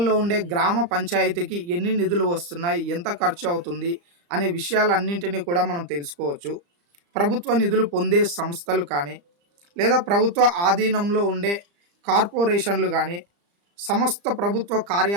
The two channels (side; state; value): left; late; 35 ms